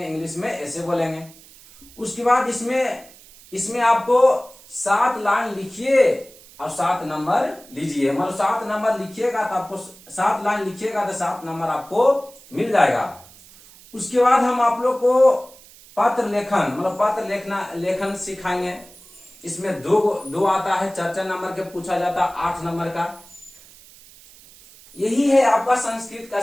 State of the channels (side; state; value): right; noise; hiss, 22 dB below the sound